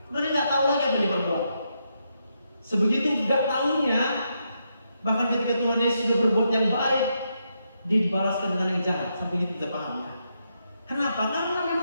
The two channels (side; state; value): both; inverted; correlation -0.81